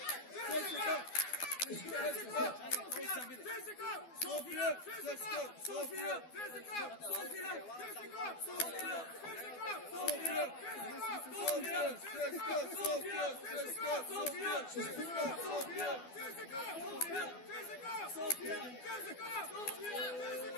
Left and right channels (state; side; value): late; right; 12 ms